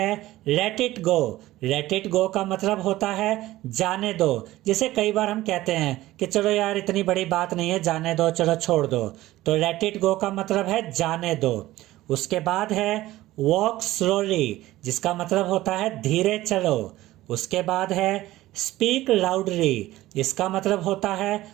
let it go. Let it go का मतलब होता है जाने दो। जैसे कई बार हम कहते हैं कि चलो यार इतनी बड़ी बात नहीं है, जाने दो, चलो छोड़ दो। तो लेट इट गो का मतलब है जाने दो। उसके बाद है वॉक स्लोली, जिसका मतलब होता है धीरे चलो। उसके बाद है स्पीक लाउडली, इसका मतलब होता है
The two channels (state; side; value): quieter; left; 16.4 dB